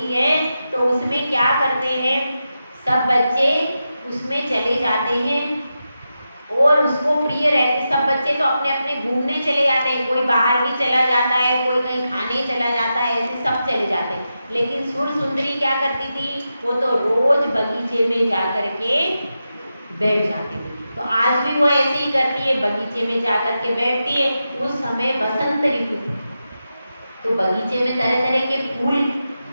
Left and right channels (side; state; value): both; inverted; correlation -0.89